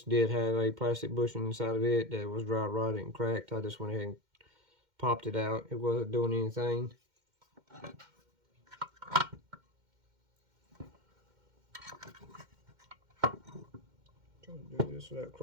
did have a plastic bushing inside of it that was dry rotted and cracked. I just went ahead and popped it out. It wasn't doing anything. Trying to do this without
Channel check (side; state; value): left; late; 2.1 ms